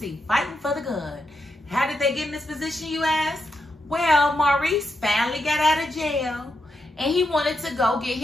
fighting for the gun. How did they get in this position, you ask? Well, Maurice finally got out of jail and he wanted to go get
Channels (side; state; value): both; normal; correlation 0.83